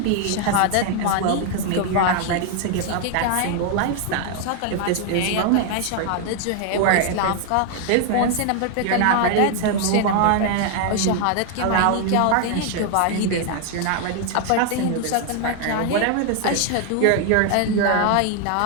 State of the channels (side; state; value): both; different; correlation 0.00